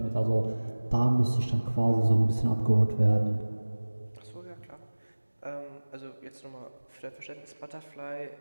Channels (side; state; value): both; inverted; correlation -1.00